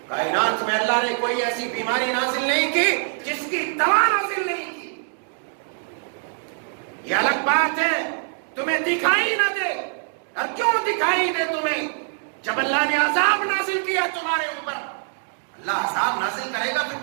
کائنات میں اللہ نے کوئی ایسی بیماری نازل نہیں کی جس کی دوا نازل نہیں کی۔ یہ الگ بات ہے تمہیں دکھائی نہ دے۔ اور کیوں دکھائی دے تمہیں؟ جب اللہ نے عذاب نازل کیا تمہارے اوپر، اللہ عذاب نازل کرے گا پھر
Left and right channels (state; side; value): silent; left; digital silence